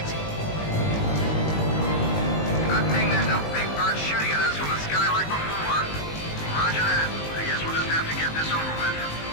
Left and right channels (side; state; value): right; late; 19 ms